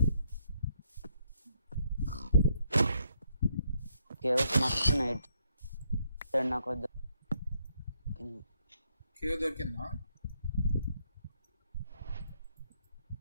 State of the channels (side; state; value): both; inverted; correlation -0.73